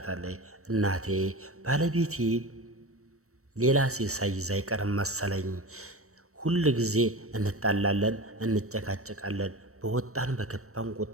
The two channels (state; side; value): late; left; 0.64 ms